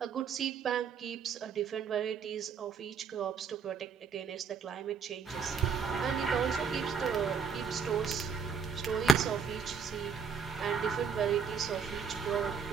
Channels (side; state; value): left; quieter; 5.9 dB